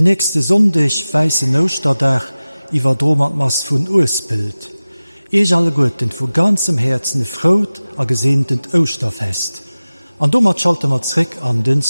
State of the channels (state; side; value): inverted; both; correlation -0.97